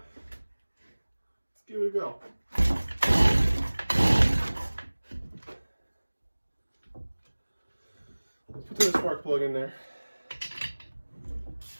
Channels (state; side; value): inverted; both; correlation -1.00